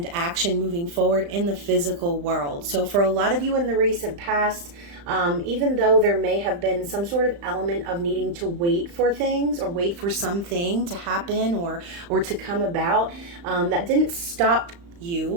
action moving forward in the physical world. So for a lot of you in the recent past, even though there may have been some sort of element of needing to wait for things or wait for something to happen or to come about, that didn't stop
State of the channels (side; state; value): left; late; 35 ms